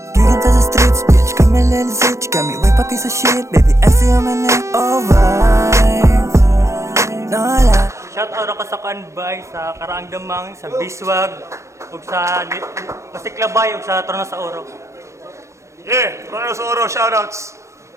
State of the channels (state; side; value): late; left; 0.14 ms